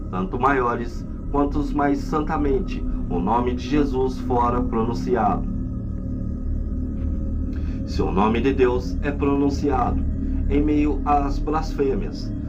tanto maiores quanto mais santamente o nome de Jesus fora pronunciado. Se o nome de Deus é pronunciado em meio às blasfêmias,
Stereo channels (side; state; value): both; identical; correlation 1.00